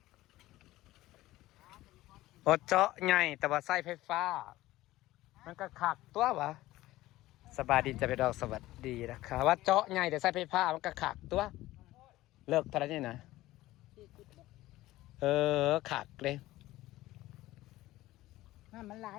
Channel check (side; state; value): right; quieter; 16.7 dB